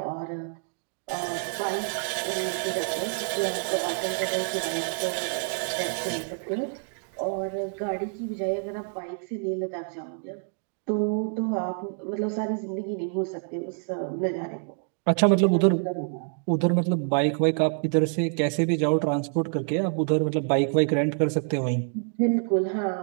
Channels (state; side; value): silent; left; 55 dB below the other